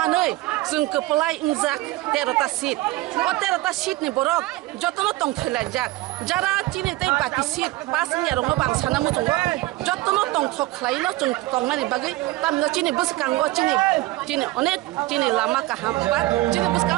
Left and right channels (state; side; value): quieter; left; 18.7 dB